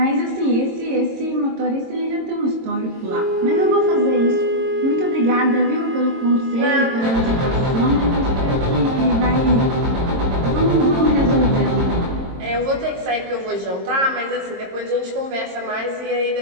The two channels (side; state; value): left; late; 22 ms